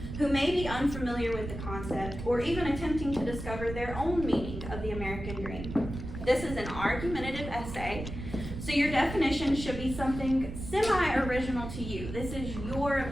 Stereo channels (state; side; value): noise; right; rumble, 8 dB below the sound